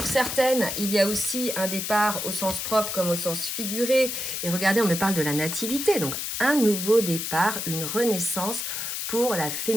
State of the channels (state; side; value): noise; left; hiss, 3 dB below the sound